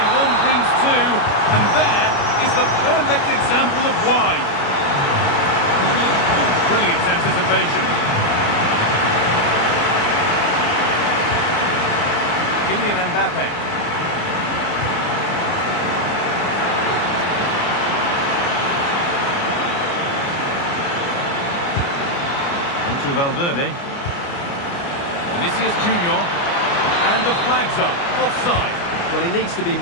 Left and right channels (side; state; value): right; late; 29 ms